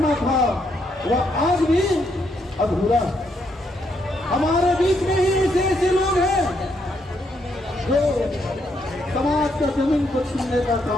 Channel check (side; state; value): both; normal; correlation 0.76